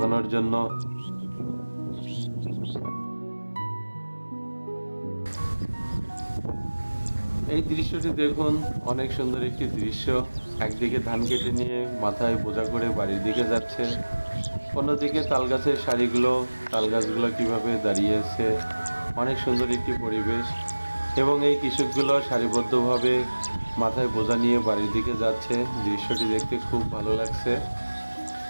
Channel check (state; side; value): inverted; both; correlation -1.00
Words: জন্য। এই দৃশ্যটি দেখুন, অনেক সুন্দর একটি দৃশ্য। একদিকে ধান কেটে নিয়ে মাথায় বোঝা করে বাড়ির দিকে যাচ্ছে, অন্যদিকে তাল গাছের সারিগুলো, তাল গাছগুলো কীভাবে দাঁড়িয়ে আছে, অনেক সুন্দর একটি পরিবেশ। এবং এই কৃষকগুলো সারিবদ্ধভাবে মাথায় বোঝা নিয়ে বাড়ির দিকে যাচ্ছে, দৃশ্যটি দেখতে খুব ভালো লাগছে।